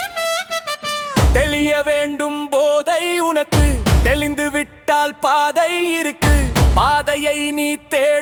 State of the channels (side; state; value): both; identical; correlation 1.00